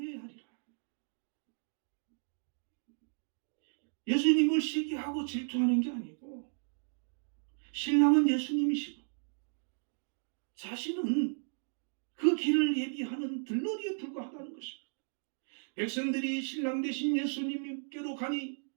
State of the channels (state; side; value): silent; left; digital silence